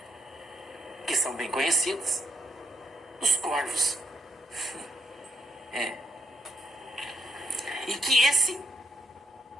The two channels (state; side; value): normal; both; correlation 0.76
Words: que são bem conhecidas, os corvos. E que esse